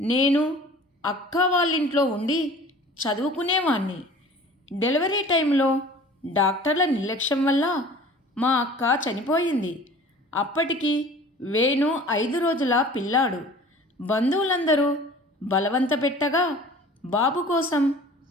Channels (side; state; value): both; normal; correlation 0.45